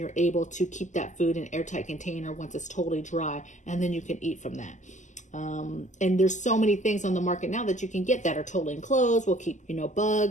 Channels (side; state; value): right; late; 0.35 ms